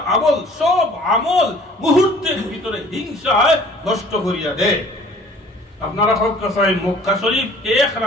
আমল, সব আমল মুহূর্তের ভিতরে হিংসায় নষ্ট করিয়া দেয়। আপনারা সব কাছে মক্কা শরীফ 1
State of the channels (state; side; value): normal; both; correlation 0.51